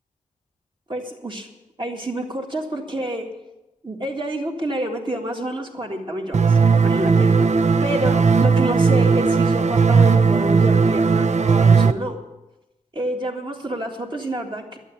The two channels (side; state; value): left; quieter; 4.1 dB